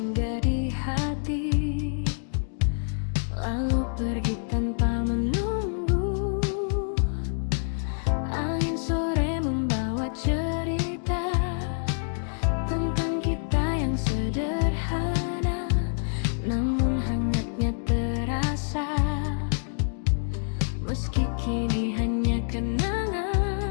di hati, lalu pergi tanpa menunggu. Angin sore membawa cerita tentang kita yang sederhana, namun hangatnya terasa. Meski kini hanya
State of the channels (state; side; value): silent; right; digital silence